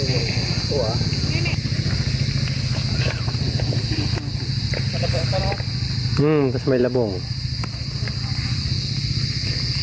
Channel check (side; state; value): both; identical; correlation 1.00